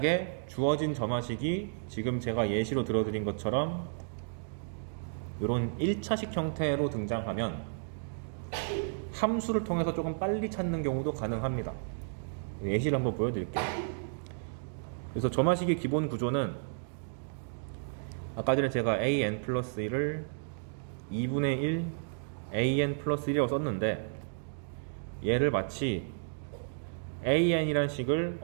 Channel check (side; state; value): left; silent; digital silence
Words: 주어진 점화식이 지금 제가 예시로 들어드린 것처럼 이런 1차식 형태로 등장하면 함수를 통해서 조금 빨리 찾는 경우도 가능합니다. 예시를 한번 보여드릴게요. 그래서 점화식의 기본 구조는 아까 전에 제가 an 플러스 1을 2분의 1 an 플러스 1이라고 썼는데, 얘를 마치 an이란 식을